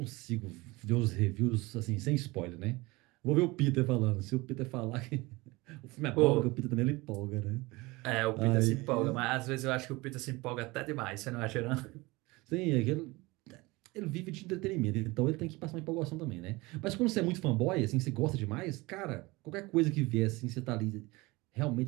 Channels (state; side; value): quieter; left; 22.7 dB